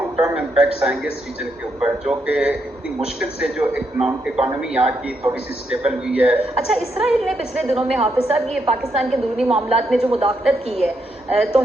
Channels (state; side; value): normal; both; correlation 0.79